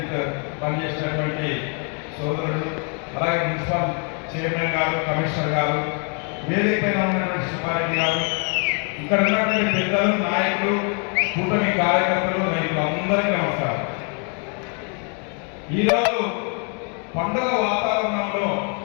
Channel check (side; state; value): right; quieter; 39.5 dB